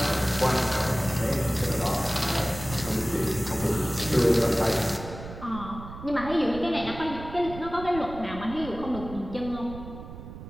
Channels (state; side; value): noise; right; rumble, 12 dB below the sound